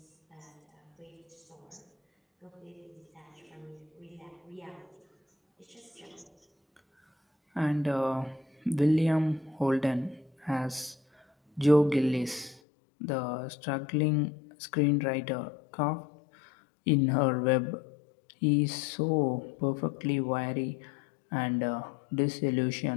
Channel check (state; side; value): drops out; right; at 12.6 s